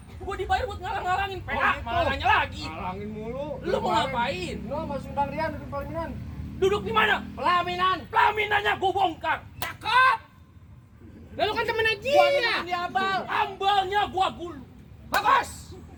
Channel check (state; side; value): identical; both; correlation 1.00